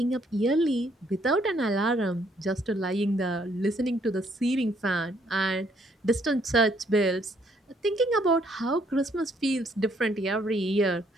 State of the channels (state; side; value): normal; both; correlation 0.68